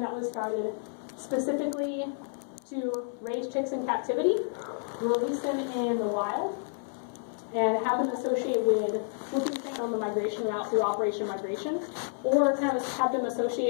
that was started specifically to raise chicks in captivity, release them in the wild, and have them associate with whooping cranes on the migration route through Operation Migration, or kind of have them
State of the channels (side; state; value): right; silent; 58 dB below the other